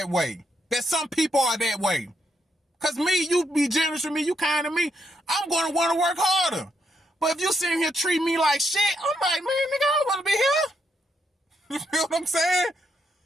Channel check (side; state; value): both; normal; correlation 0.78